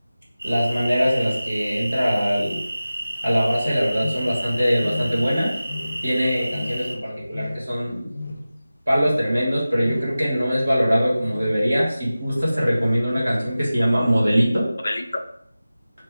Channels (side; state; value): both; inverted; correlation -0.96